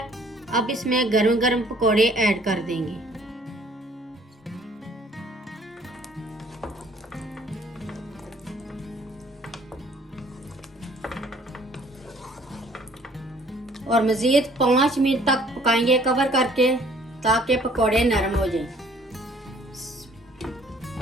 अब इसमें गरम गरम पकोड़े ऐड कर देंगे। और मजीद 5 मिनट तक पकाएंगे कवर करके, ताकि पकोड़े नरम हो जाएं।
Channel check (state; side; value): normal; both; correlation 0.58